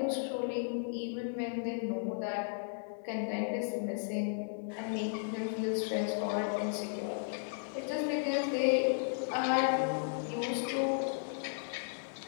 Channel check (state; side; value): silent; right; digital silence